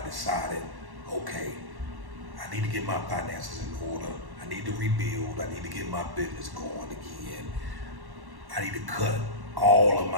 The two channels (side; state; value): left; late; 1.1 ms